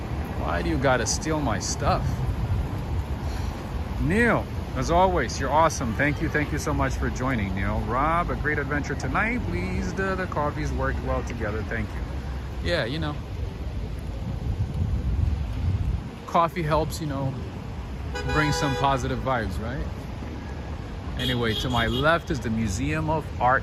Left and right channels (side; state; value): both; identical; correlation 1.00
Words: Why do you gotta steal my stuff? Neil, as always, you're awesome. Thank you so much for joining, Neil. Rob, a great adventure tonight. Pleased the coffees worked well together. Thank you. Yeah, you know, coffee helps, bring some positive vibes, right? Anyway, to my left is the Museum of